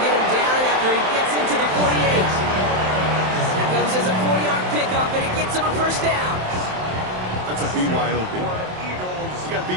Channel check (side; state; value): left; late; 27 ms